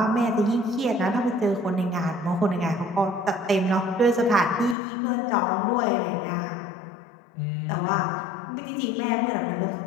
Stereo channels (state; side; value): drops out; right; at 4.8 s